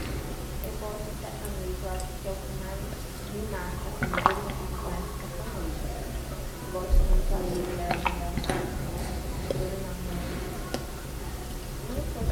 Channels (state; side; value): identical; both; correlation 1.00